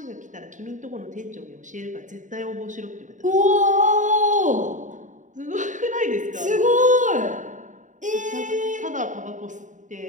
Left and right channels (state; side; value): late; left; 0.36 ms